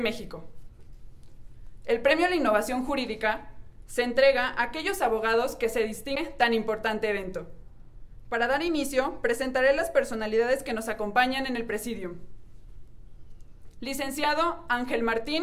El premio a la innovación jurídica se entrega a aquellos abogados que se distinguen en tan importante evento. Para dar inicio, presentaré las personalidades que nos acompañan en el presidium. Licenciado Ángel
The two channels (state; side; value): identical; both; correlation 1.00